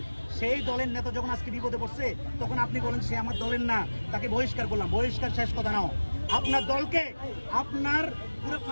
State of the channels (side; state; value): both; inverted; correlation -1.00